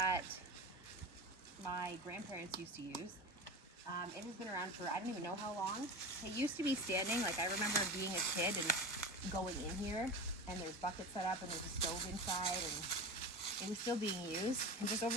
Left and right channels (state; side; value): normal; both; correlation 0.28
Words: my grandparents used to use. It has been around for I don't even know how long. It used to be standing, like I remember being a kid and going in here, and there's buckets set up and there's a stove inside, and it was still being used. And just over